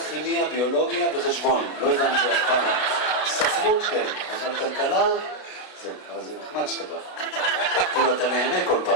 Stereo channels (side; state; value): right; late; 32 ms